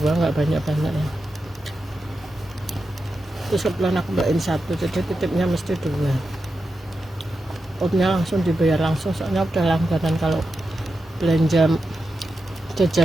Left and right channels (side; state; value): both; normal; correlation 0.89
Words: banyak-banyak ya. terus kebetulan aku bawain satu, jadi titipnya mesti 2. Outnya langsung dibayar langsung, soalnya udah langganan kalau belanja